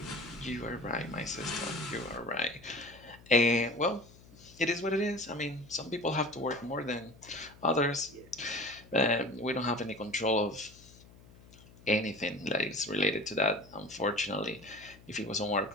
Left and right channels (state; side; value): noise; left; hum, 23 dB below the sound